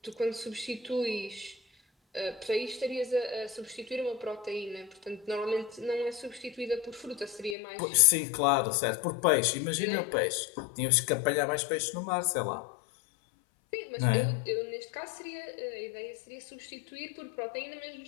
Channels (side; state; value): right; drops out; at 7.6 s